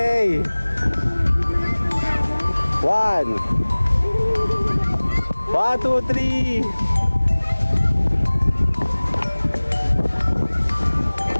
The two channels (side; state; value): both; inverted; correlation -1.00